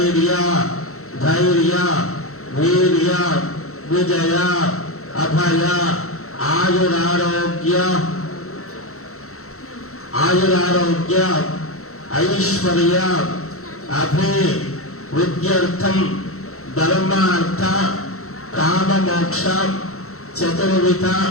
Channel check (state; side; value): late; right; 0.64 ms